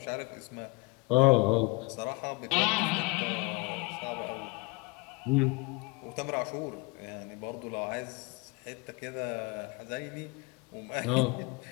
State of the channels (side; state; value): right; quieter; 26.5 dB